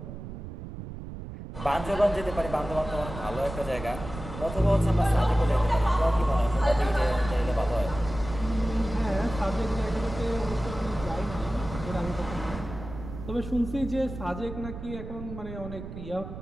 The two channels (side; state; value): right; noise; rumble, 10 dB below the sound